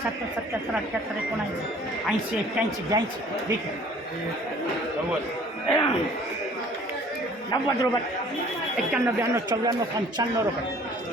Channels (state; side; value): normal; both; correlation 0.52